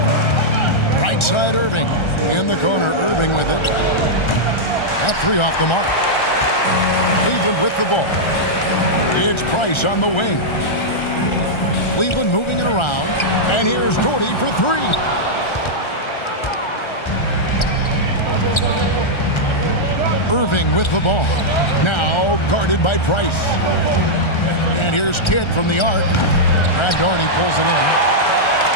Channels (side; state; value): right; late; 1.3 ms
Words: Right side Irving. In the corner, Irving with it. That three off the mark. Cleveland with the ball. It's Price on the wing. Cleveland moving it around. And here's Doherty for three. Irving with the ball. Now guarded by Price. And here's Kidd from the arc. Brad Doherty pulls it in.